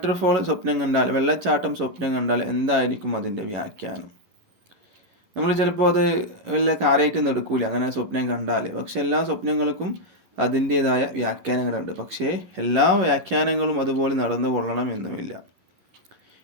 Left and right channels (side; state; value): left; late; 11 ms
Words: സ്വപ്നം കണ്ടാൽ, വെള്ളച്ചാട്ടം സ്വപ്നം കണ്ടാൽ എന്തായിരിക്കും അതിൻ്റെ വ്യാഖ്യാനം? നമ്മൾ ചിലപ്പോൾ അത് വല്ല കാര്യമായിട്ടൊന്നും എടുക്കൂല അങ്ങനെ സ്വപ്നം കണ്ടാൽ. പക്ഷെ എല്ലാ സ്വപ്നങ്ങൾക്കും അതിൻ്റേതായ വ്യാഖ്യാനങ്ങളുണ്ട്. പക്ഷേ എല്ലാ വ്യാഖ്യാനങ്ങളും അതുപോലെ നടന്നു കൊള്ളണം എന്നുമില്ല.